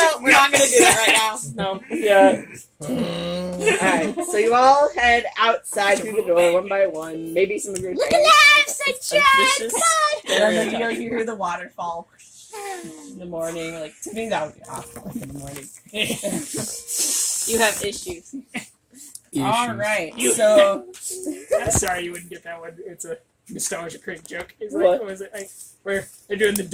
we're not gonna do that right now. No. Yeah. Alright, so you all head outside through the door one by one. Maybe some of your friends. Suspicious. And then you hear the waterfall in the morning. Like, to me, that would be awful in the morning. You have issues. Alright, so. I'm sorry you wouldn't get that one. It's a nostalgia cringe joke. It's What? like, what was it? Like, where they're doing the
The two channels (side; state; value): both; identical; correlation 1.00